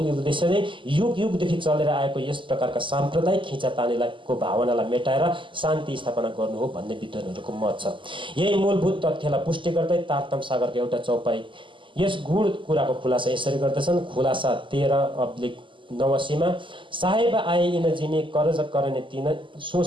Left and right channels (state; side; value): late; left; 0.24 ms